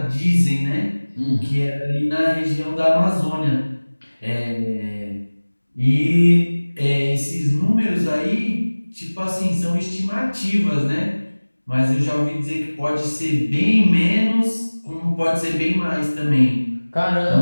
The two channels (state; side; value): inverted; both; correlation -1.00